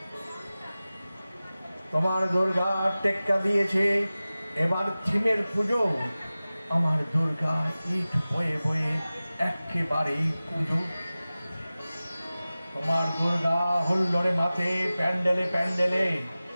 তোমার দুর্গা টেক্কা দিয়েছে এবার থিমের পুজো, আমার দুর্গা ইট বয়ে বয়ে একেবারেই পুজো। তোমার দুর্গা হুল্লোড়ে মাথে প্যান্ডেলে প্যান্ডেলে,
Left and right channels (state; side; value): inverted; both; correlation -0.97